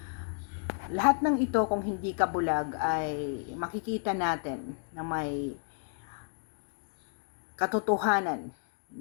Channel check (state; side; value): silent; right; digital silence